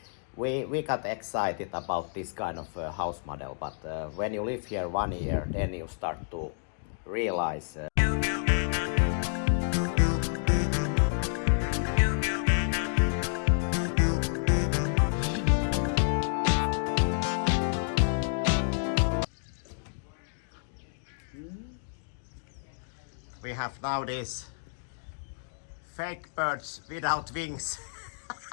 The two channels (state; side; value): silent; right; digital silence